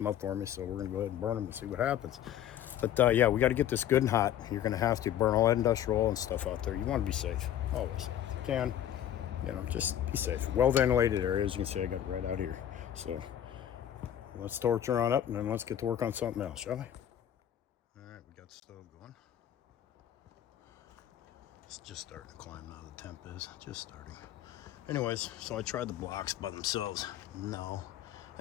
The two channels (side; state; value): right; quieter; 10.8 dB